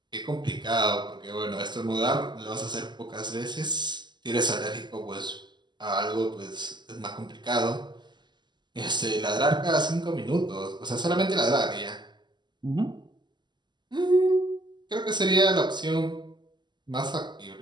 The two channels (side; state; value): left; late; 0.21 ms